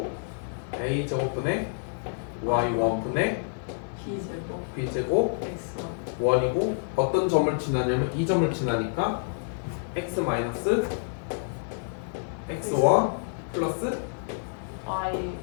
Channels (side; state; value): right; silent; digital silence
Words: a 제곱분의 y1분의 b제곱 b제곱 x1 1이고 어떤 점을 지나냐면 이 점을 지나니까 x 마이너스 x1 플러스 y